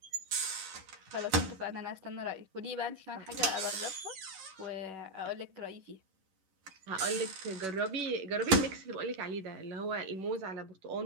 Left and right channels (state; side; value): late; left; 11 ms